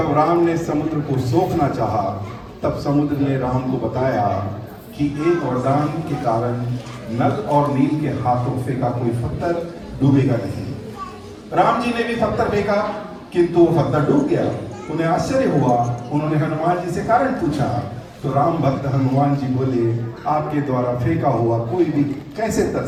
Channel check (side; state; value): both; identical; correlation 1.00